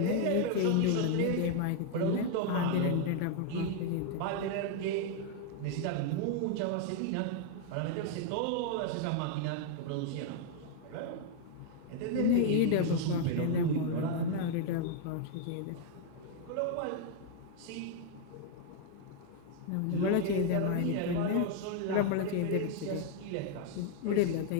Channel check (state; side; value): different; both; correlation 0.00